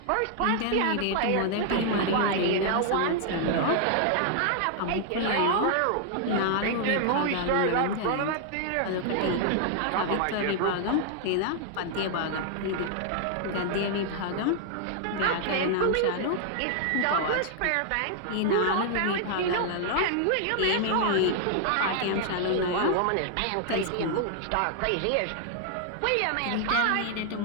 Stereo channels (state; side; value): different; both; correlation 0.00